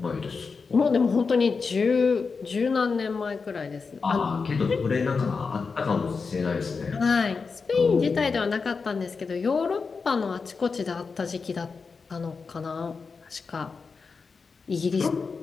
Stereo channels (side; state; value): right; quieter; 4.9 dB